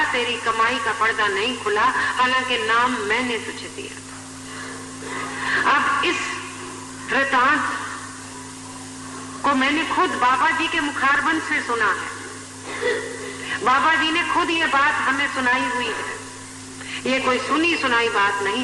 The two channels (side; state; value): both; identical; correlation 1.00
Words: तेरी कमाई का पर्दा नहीं खुला, हालांकि नाम मैंने तुझे दिया था। अब इस वृतांत को मैंने खुद बाबा जी के मुखारबंद से सुना है। बाबा जी ने खुद ये बात हमें सुनाई हुई है, ये कोई सुनी सुनाई बात